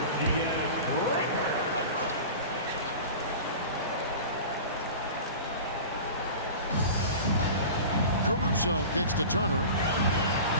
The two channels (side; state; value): both; inverted; correlation -0.35